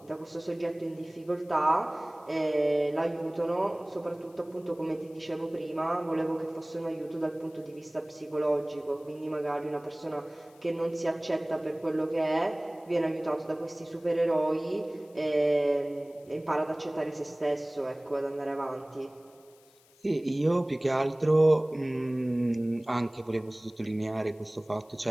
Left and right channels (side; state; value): left; noise; hiss, 29 dB below the sound